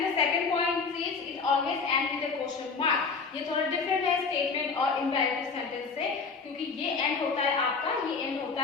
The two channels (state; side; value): quieter; right; 4.9 dB